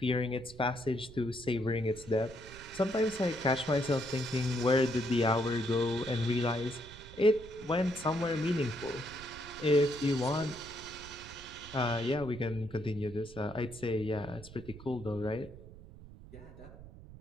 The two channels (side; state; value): right; noise; rumble, 17 dB below the sound